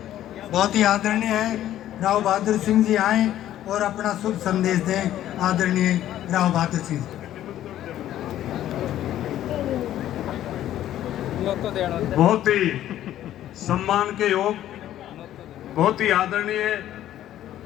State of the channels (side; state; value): right; quieter; 12.4 dB